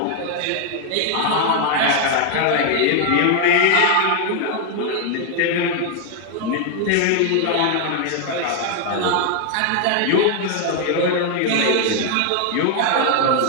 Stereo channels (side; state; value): both; different; correlation 0.00